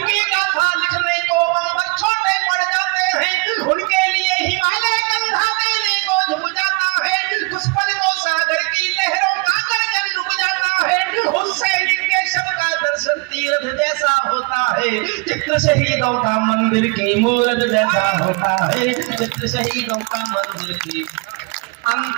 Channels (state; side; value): quieter; left; 30.8 dB